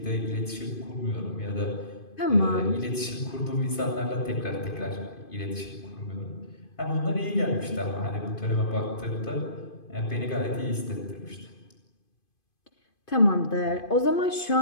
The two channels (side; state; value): right; late; 2.5 ms